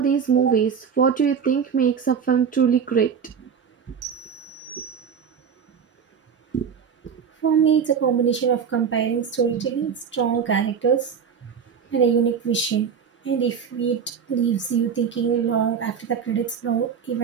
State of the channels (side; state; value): left; quieter; 7.0 dB